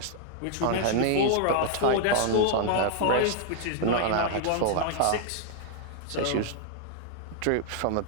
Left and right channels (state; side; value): different; both; correlation 0.00